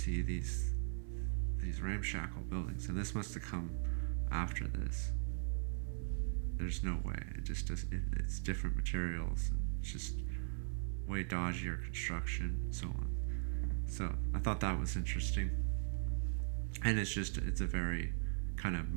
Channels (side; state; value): left; silent; 52 dB below the other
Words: these ramshackle buildings, and this must have come after this. There's no way. It just does. It's different materials. And it's just way dodgier construction, and so on. So I thought that was interesting, and it's a very kind of